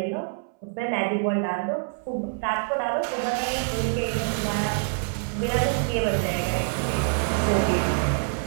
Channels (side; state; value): left; silent; 61 dB below the other